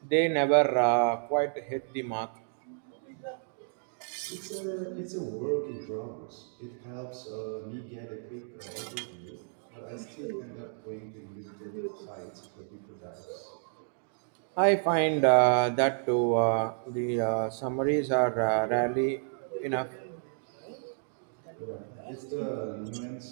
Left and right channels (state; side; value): silent; left; digital silence